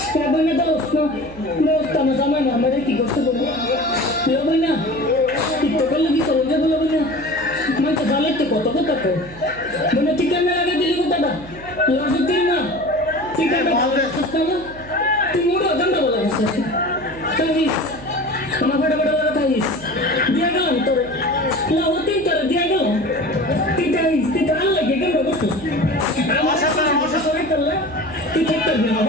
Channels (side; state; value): right; noise; hum, 18 dB below the sound